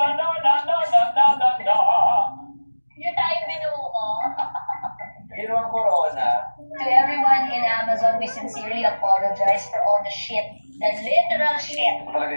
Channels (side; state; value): both; inverted; correlation -1.00